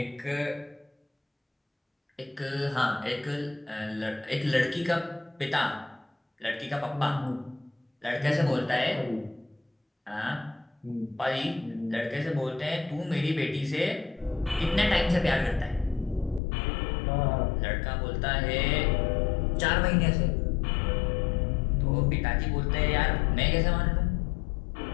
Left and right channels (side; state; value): right; drops out; at 16.4 s